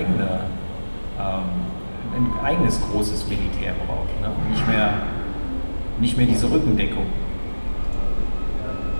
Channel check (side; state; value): both; inverted; correlation -1.00